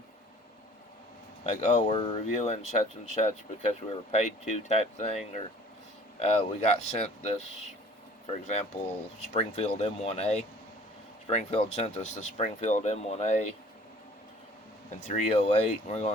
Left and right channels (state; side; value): normal; both; correlation 0.51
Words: like, oh, we're reviewing such and such because we were paid to type thing, or we got sent this, for example, Springfield M1A. Springfield sent us the Springfield M1A in 308. We're